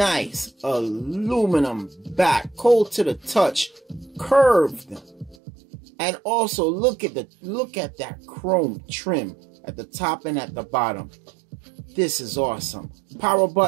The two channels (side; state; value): left; drops out; at 5.4 s